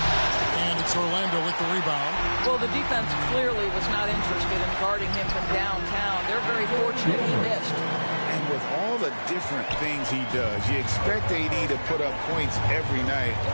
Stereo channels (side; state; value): both; inverted; correlation -1.00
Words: it's Orlando with the rebound. Well, the defense clearly was not interested in guarding him from downtown. They're very fortunate he missed. And with all the different things he does, you expect AD to put up points every night.